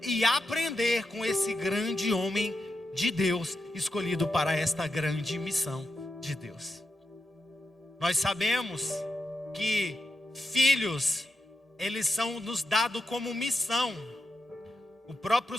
e aprender com esse grande homem de Deus, escolhido para esta grande missão de Deus. Nós sabemos que filhos eles são nos dados como missão. O próprio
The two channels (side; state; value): both; normal; correlation 0.87